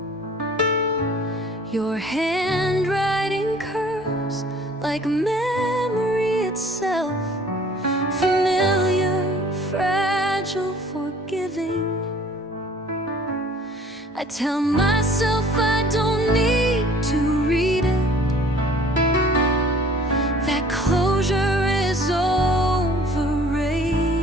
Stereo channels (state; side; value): normal; both; correlation 0.52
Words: Your handwriting curves like memory itself, familiar, fragile, forgiving. I tell myself I don't need to read it, that closure is overrated.